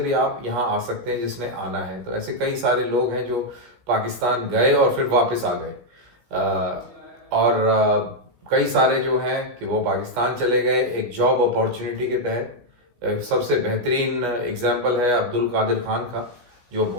आप यहाँ आ सकते हैं जिसने आना है। तो ऐसे कई सारे लोग हैं जो पाकिस्तान गए और फिर वापस आ गए। और कई सारे जो हैं कि वो पाकिस्तान चले गए एक जॉब अपॉर्चुनिटी के तहत। सबसे बेहतरीन एग्जाम्पल है अब्दुल कादिर खान का, जो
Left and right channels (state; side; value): late; left; 16 ms